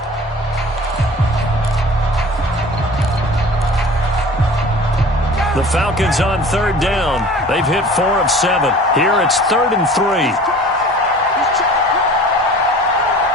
The Falcons on third down. They've hit 4 of 7. Here it's 3rd and 3.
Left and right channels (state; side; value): normal; both; correlation 0.43